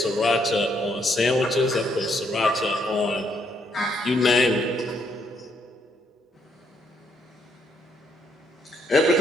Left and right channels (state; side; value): normal; both; correlation 0.73